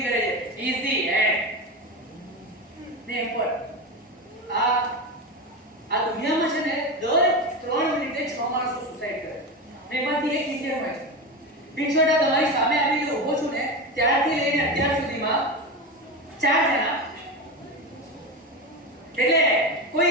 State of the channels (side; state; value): both; normal; correlation 0.20